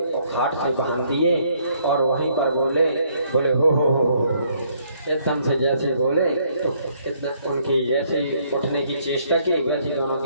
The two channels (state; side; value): inverted; both; correlation -0.67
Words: और खाट से बांध दिए और वहीं पर बोले हो एकदम से जैसे बोले तो एकदम उनकी जैसे उठने की चेष्टा की वैसे दोनों